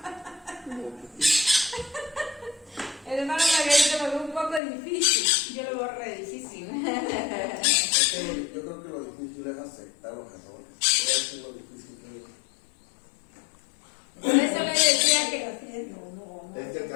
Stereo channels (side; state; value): right; drops out; at 4.6 s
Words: El hermano Margarito lo ve un poco difícil. Yo lo veo re difícil. Yo creo que lo difícil es aceptar los errores. Eso es lo difícil que es. Por eso le decía que Es que